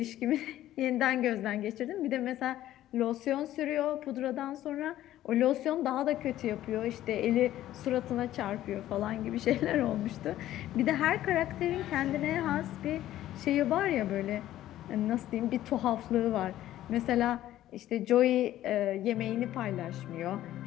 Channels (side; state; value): right; quieter; 13.5 dB